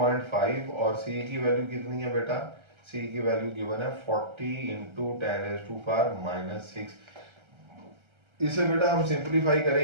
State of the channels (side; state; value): left; late; 1.3 ms